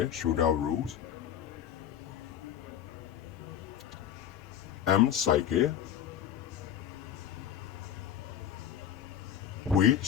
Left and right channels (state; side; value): quieter; right; 9.8 dB